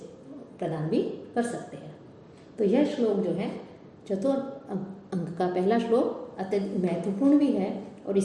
प्रदान भी कर सकते हैं। तो यह श्लोक जो है चतुर्थ अंक का पहला श्लोक अत्यधिक महत्वपूर्ण भी है, और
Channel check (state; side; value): identical; both; correlation 1.00